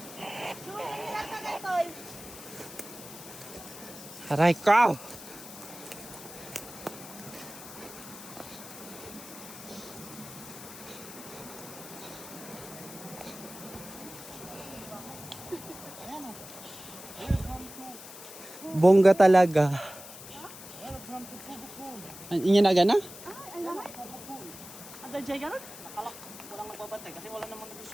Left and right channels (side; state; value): left; noise; hiss, 14 dB below the sound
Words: Aray ko! Bongga talaga. Inyo na gana? Ada jay ka na? Walang nagbabantay kasi wala namang